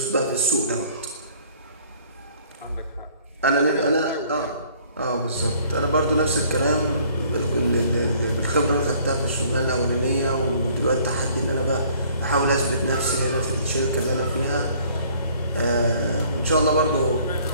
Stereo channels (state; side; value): inverted; both; correlation -0.58